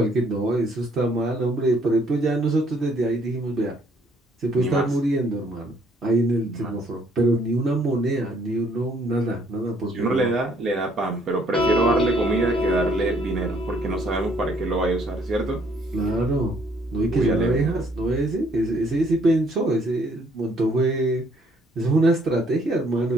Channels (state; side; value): normal; both; correlation 0.65